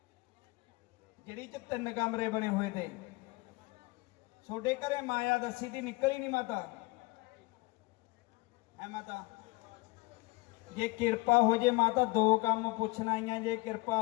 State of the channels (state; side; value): quieter; right; 23.7 dB